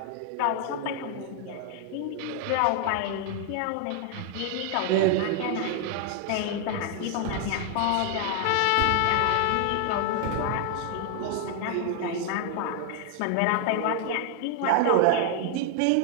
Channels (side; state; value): both; different; correlation 0.00